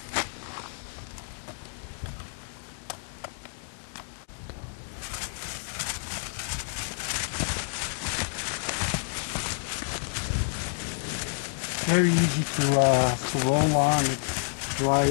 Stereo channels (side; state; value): right; silent; digital silence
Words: Very easy to roll on. It